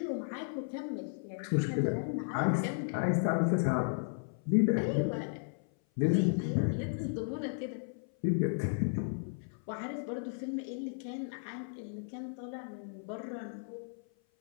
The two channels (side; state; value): right; silent; 55 dB below the other